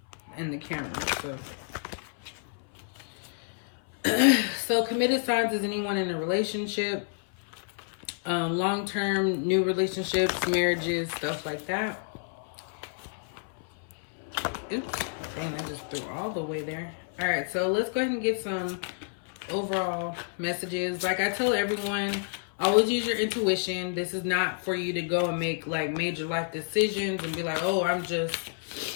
camera. So committed signs is anyone in a relationship, long-term, new relationships, marriages, stuff like that. Oops, dang, I just threw all the way there. All right, so let's go ahead and get some overall messages. Like I tell everyone, always use your intuition. This is not for you to go and make like major life decisions and be like, oh, I'm just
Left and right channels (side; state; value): right; silent; 58 dB below the other